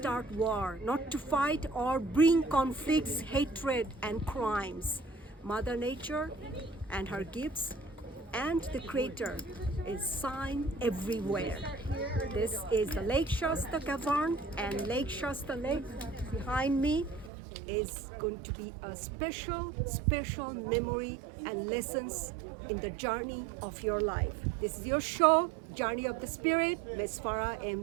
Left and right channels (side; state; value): left; drops out; at 17.3 s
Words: war, not to fight or bring conflicts, hatred, and crimes. Mother Nature and her gifts and the Creator is seen everywhere. This is the Lake Shasta Cavern, and Lake Shasta Lake behind me is going to be a special memory and lessons in the journey of your life. This is your show, Journey of the Spirit, Ms. Farah M.